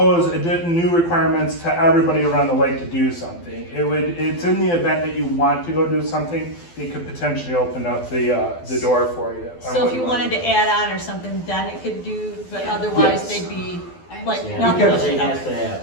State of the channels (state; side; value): late; right; 12 ms